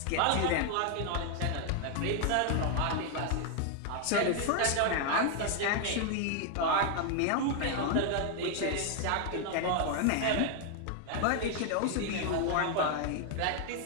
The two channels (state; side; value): different; both; correlation 0.00